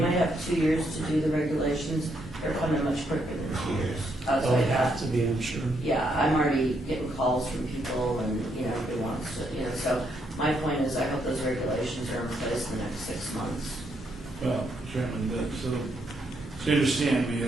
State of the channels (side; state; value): both; normal; correlation 0.76